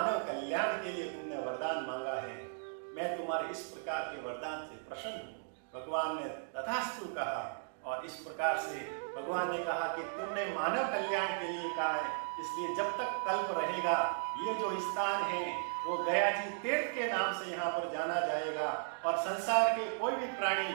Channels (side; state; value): left; silent; digital silence